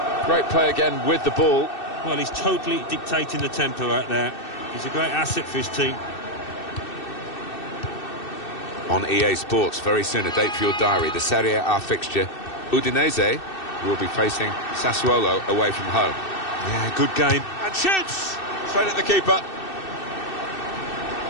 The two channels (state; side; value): late; right; 2.6 ms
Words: Great play again with the ball. Well, he's totally dictating the tempo out there. He's a great asset for his team. On EA Sports, very soon, a date for your diary, the Serie A fixture. Udinese will be facing Sassuolo away from home. Yeah, good game. And shoots! Straight at the keeper.